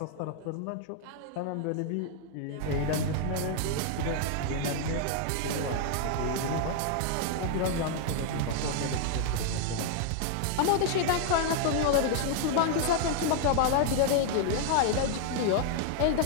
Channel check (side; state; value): both; different; correlation 0.00